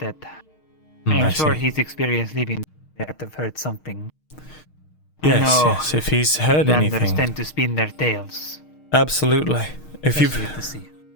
I am sure see. his experience living there would have heard something. Yes, I know yes, if he's heard Landers anything. tend to spin their tails. Absolutely. If you've Especially at the sea.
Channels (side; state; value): right; late; 6.5 ms